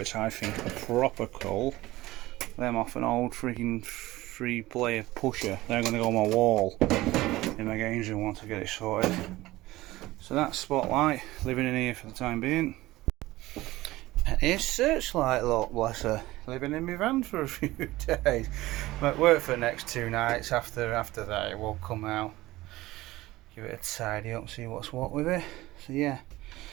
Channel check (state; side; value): quieter; left; 18.0 dB